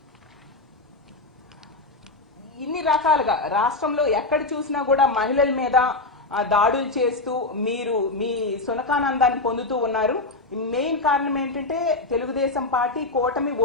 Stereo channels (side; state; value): right; quieter; 3.1 dB